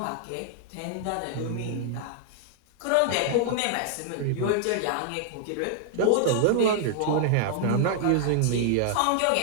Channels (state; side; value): different; both; correlation -0.01